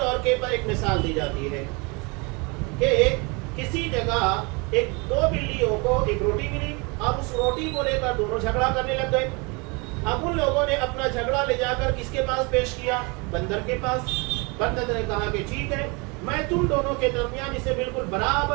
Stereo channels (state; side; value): quieter; left; 29.2 dB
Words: کے پر ایک مثال دی جاتی ہے کہ کسی جگہ ایک دو بلیوں کو ایک روٹی ملی اور اس روٹی کو لے کر دونوں جھگڑا کرنے لگ گئے۔ اب ان لوگوں نے اپنا جھگڑا لے جا کر کس کے پاس پیش کیا؟ بندر کے پاس۔ بندر نے کہا کہ ٹھیک ہے میں تم دونوں کے درمیان اسے بالکل